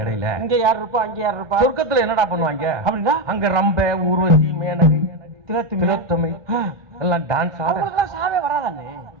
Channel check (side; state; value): left; late; 1.2 ms